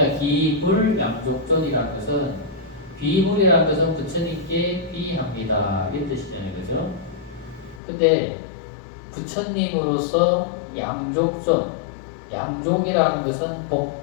기불 양족존이라는 것은 비불이라는 것은 부처님께 비합니다. 이런 뜻이잖아요. 그죠? 근데 부처님으로서 양족전. 양족이라는 것은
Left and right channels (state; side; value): drops out; right; at 7.8 s